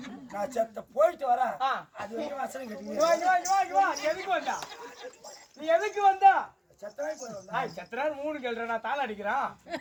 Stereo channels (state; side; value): identical; both; correlation 1.00